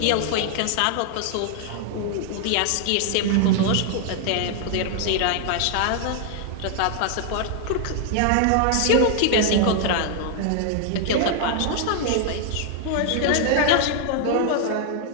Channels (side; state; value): both; different; correlation 0.00